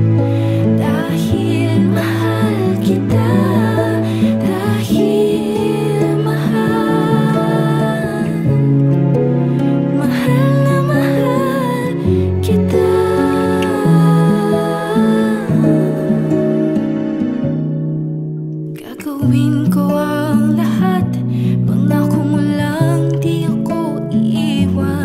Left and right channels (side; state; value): both; identical; correlation 1.00